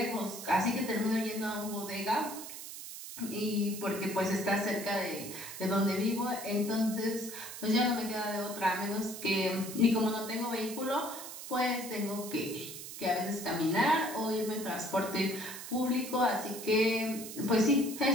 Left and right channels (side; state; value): right; noise; hiss, 10 dB below the sound